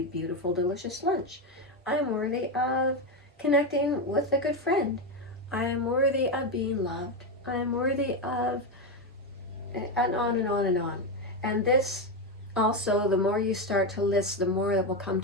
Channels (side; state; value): both; normal; correlation 0.10